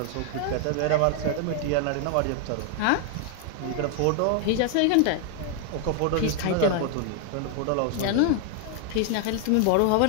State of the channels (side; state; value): both; different; correlation 0.00